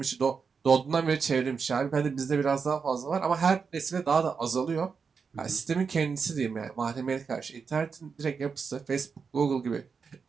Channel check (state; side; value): quieter; left; 5.6 dB